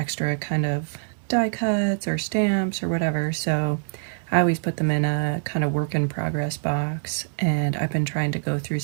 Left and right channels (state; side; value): silent; left; digital silence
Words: kind of die cuts or stamps or whatever, so I always put them in a kind of work in progress box, and I've been trying to go through